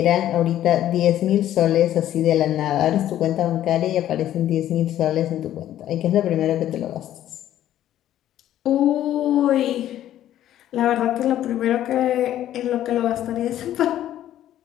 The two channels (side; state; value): right; quieter; 12.2 dB